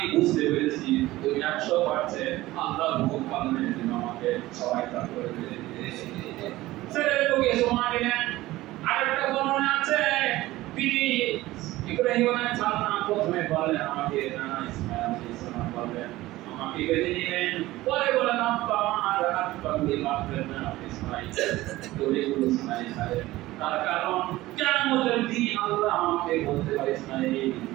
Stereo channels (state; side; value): quieter; left; 17.5 dB